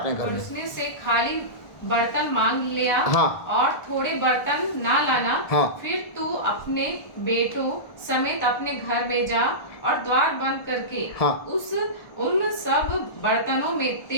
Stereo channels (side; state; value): right; late; 1.4 ms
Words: घर में, पड़ोसियों से खाली बर्तन मांग लिया। हाँ। और थोड़े बर्तन ना लाना। हाँ। फिर तू अपने बेटों समेत अपने घर में जा और द्वार बंद करके हाँ। उन सब बर्तनों में